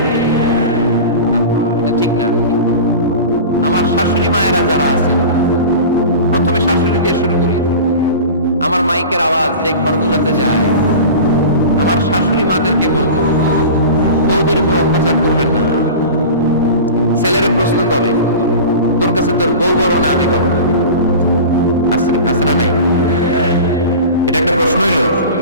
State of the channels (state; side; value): inverted; both; correlation -0.33